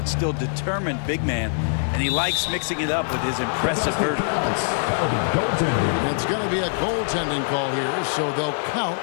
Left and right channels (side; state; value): right; silent; 60 dB below the other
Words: still determined big man, and he likes mixing it up with his impressive vertical. It's going to be a goaltending call here, so they'll count